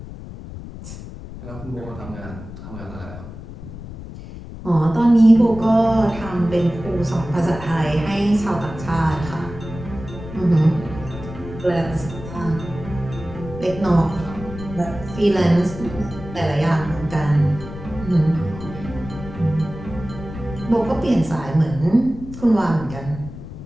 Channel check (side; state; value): left; noise; rumble, 12 dB below the sound